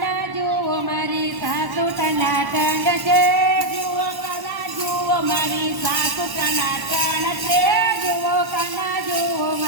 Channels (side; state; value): left; late; 1.1 ms